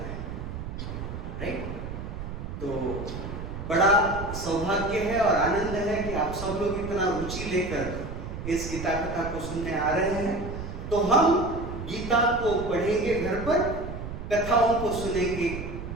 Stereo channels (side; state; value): right; noise; rumble, 8 dB below the sound